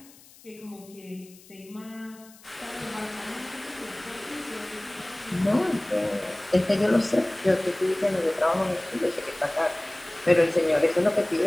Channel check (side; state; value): left; noise; hiss, 24 dB below the sound